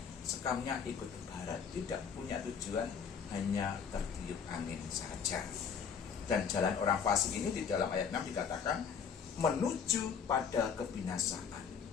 sekamnya ikut ke barat. Tidak punya tujuan, hanya tertiup angin saja. Dan jalan orang fasik ini di dalam ayat 6 dikatakan menuju pada kebinasaan.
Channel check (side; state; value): right; quieter; 6.7 dB